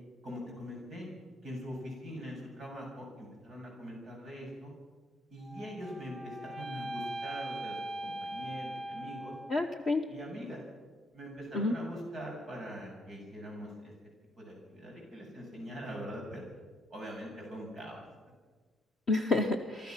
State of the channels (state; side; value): normal; both; correlation 0.72